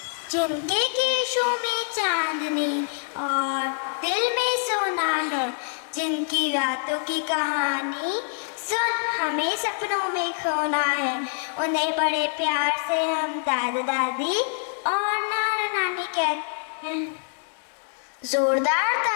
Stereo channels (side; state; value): right; silent; digital silence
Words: जिंदगी show में चांदनी और दिल में सोना है, जिनकी रातों की कहानी सुन हमें सपनों में खोना है, उन्हें बड़े प्यार से हम दादा दादी और नाना नानी कहते हैं। जोरदार